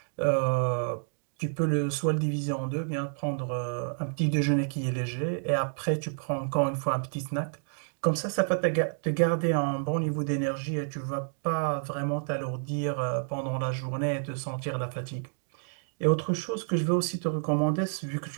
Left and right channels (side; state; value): left; silent; digital silence